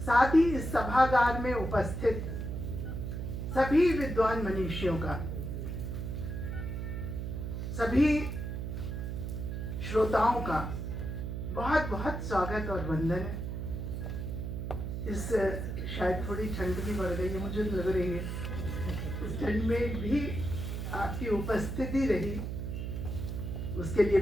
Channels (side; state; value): right; noise; hum, 4 dB below the sound